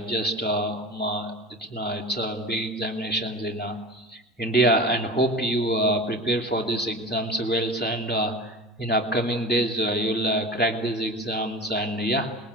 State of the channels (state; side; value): normal; both; correlation 0.35